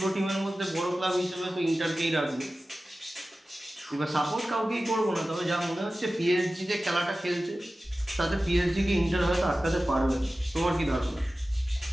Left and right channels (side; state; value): both; normal; correlation 0.96